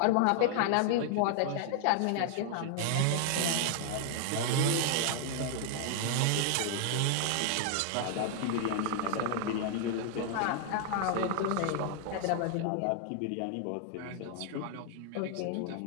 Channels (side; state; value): both; different; correlation 0.00